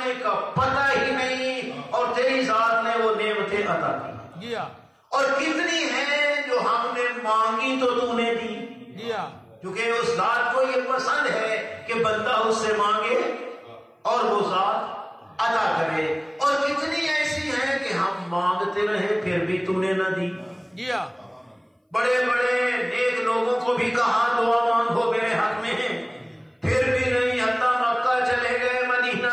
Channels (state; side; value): identical; both; correlation 1.00